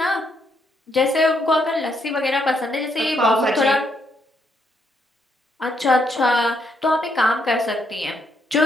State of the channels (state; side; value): normal; both; correlation 0.75